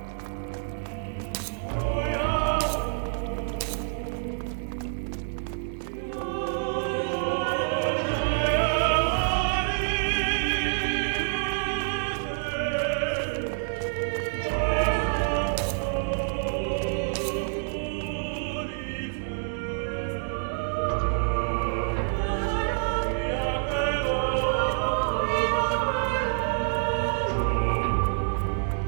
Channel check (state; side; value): silent; left; digital silence